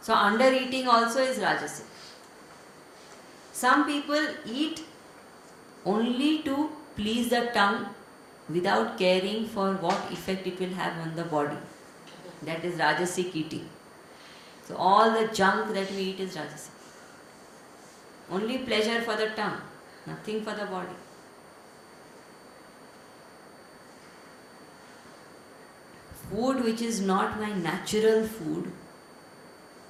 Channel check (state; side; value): identical; both; correlation 1.00